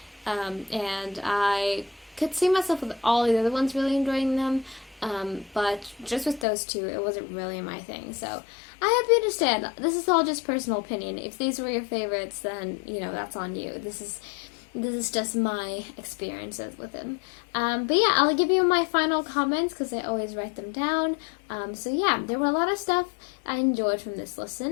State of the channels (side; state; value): right; drops out; at 6.5 s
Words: and I could see myself with all the other ones really enjoying them, but just with those 2, it wasn't really my thing. So I hope you understand. This is all just personal opinion. If these were your favorites, then you know that's on you. This is just my experiences with them. But yeah, I'll give you my final comments because I always write them down. So yeah, there were a lot of stuff I enjoyed from this